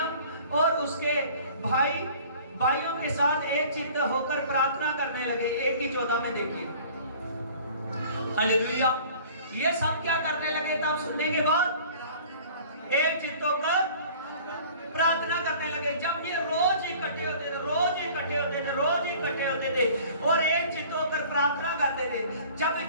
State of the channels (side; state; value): both; inverted; correlation -0.48